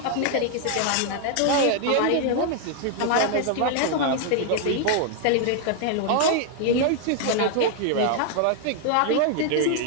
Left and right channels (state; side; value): different; both; correlation 0.00